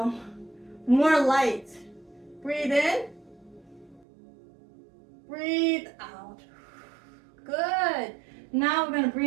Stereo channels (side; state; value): left; drops out; at 4.0 s